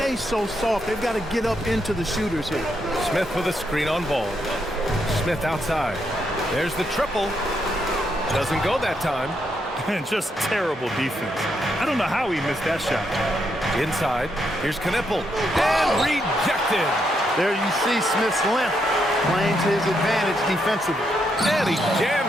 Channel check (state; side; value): normal; both; correlation 0.79